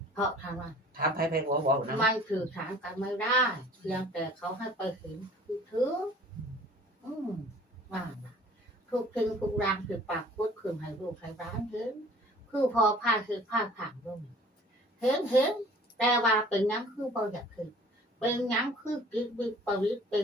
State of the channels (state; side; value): normal; both; correlation 0.50